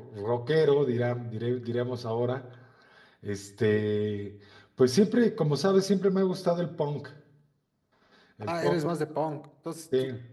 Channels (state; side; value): identical; both; correlation 1.00